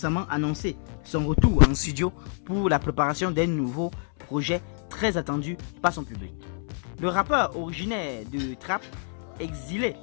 annoncé son retour en studio pour la préparation d'un nouveau projet très attendu par son public. Le rappeur originaire de Trap, exilé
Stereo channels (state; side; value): silent; right; 60 dB below the other